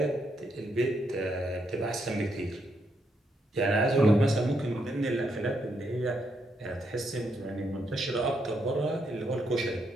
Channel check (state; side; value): normal; both; correlation 0.78